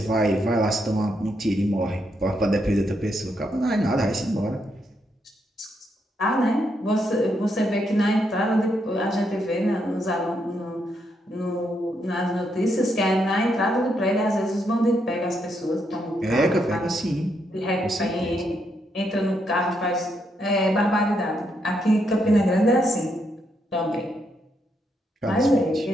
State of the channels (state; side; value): normal; both; correlation 0.78